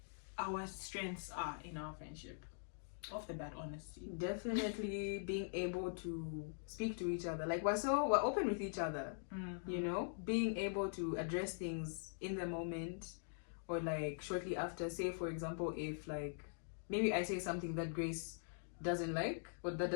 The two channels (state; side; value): silent; right; digital silence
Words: our strengths are in our friendship? Off the bat, honesty. Definitely being able to speak to each other. Like we're open with each other. You know, being able to address things in the moment or like shortly after. Say for example, if like maybe I say something that Grace doesn't like or that